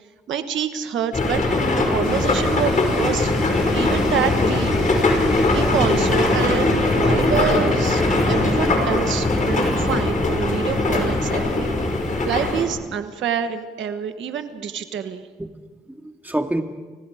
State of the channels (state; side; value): normal; both; correlation 0.59